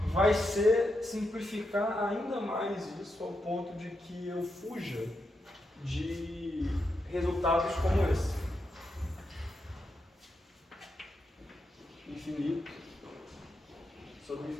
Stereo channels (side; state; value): both; normal; correlation 0.85